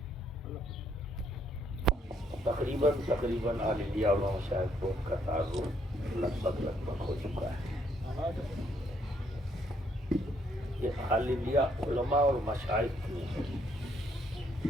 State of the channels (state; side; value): normal; both; correlation 0.70